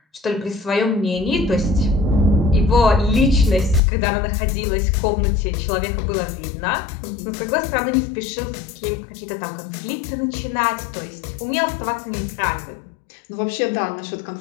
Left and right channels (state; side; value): drops out; right; at 3.8 s